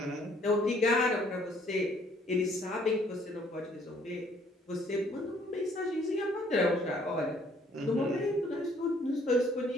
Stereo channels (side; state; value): both; normal; correlation 0.63